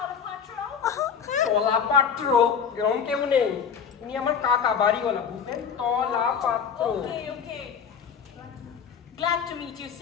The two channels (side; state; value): right; quieter; 7.0 dB